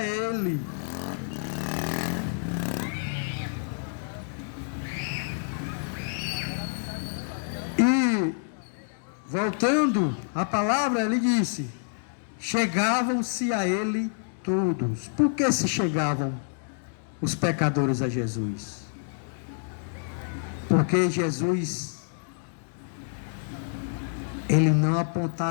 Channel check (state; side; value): silent; right; digital silence